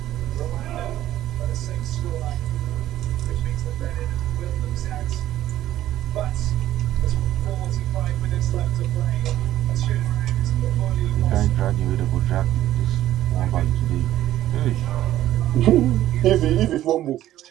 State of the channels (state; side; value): quieter; left; 13.3 dB